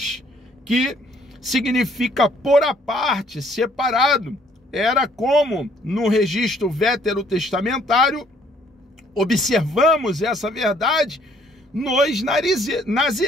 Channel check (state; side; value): normal; both; correlation 0.63